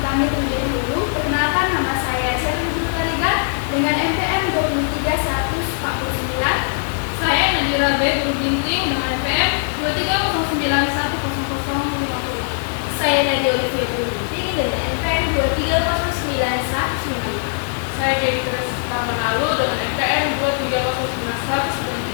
kami terlebih dahulu. Perkenalkan, nama saya Cherly Tarigan dengan NPM 23149. Saya Nadira B. Dulu Ginting dengan NPM 230910050. Saya Nadia Olivia Dulu Ginting dengan NPM 2309155. Saya Dewi Tresita Manalu dengan NPM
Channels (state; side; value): silent; right; digital silence